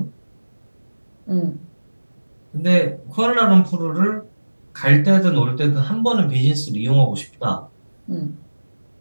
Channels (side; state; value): both; inverted; correlation -1.00